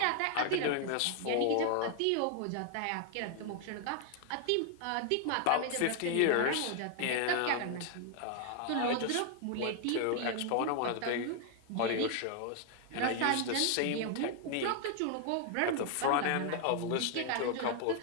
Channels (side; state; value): both; different; correlation 0.00